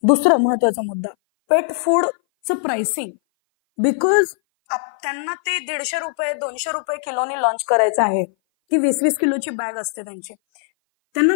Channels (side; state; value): right; silent; 59 dB below the other